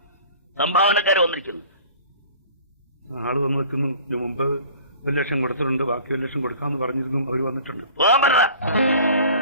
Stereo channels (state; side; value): inverted; both; correlation -0.47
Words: സംഭാവനക്കാരെ വന്നിരിക്കുന്നു. ആള് വന്നു വെക്കുന്നു. ഇതിനു മുമ്പ് 1 ലക്ഷം കൊടുത്തിട്ടുണ്ട്, ബാക്കി 1 ലക്ഷം കൊടുക്കാന്ന് പറഞ്ഞിരുന്നു. അവർ വന്നിട്ടുണ്ട്.